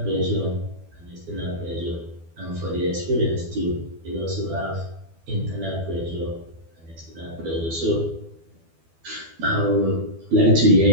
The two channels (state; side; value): late; left; 12 ms